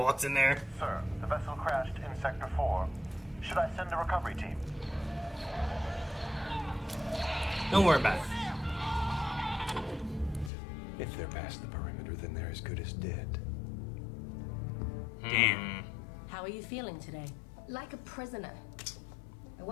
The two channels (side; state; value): right; drops out; at 10.5 s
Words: in there. Sir, the vessel crashed in Sector 4. Should I send a recovery team? Don't worry about it. If they're past the perimeter, then they're as good as dead. Damn. How are you feeling today? Like a prisoner. I